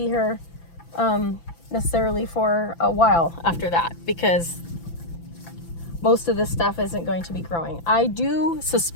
here necessarily for a while after that, because most of this stuff isn't going to be growing. I do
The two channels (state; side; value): late; right; 5.9 ms